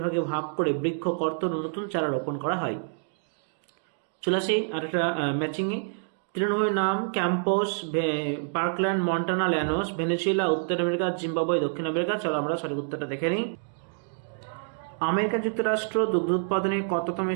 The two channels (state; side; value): silent; left; digital silence